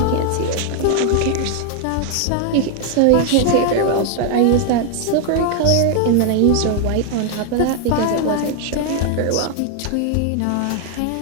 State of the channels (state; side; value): different; both; correlation 0.00